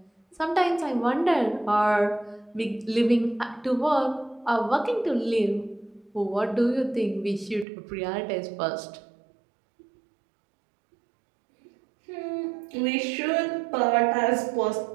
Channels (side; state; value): left; drops out; at 7.7 s